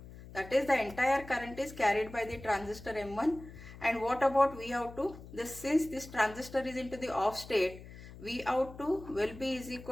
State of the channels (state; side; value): noise; left; hum, 16 dB below the sound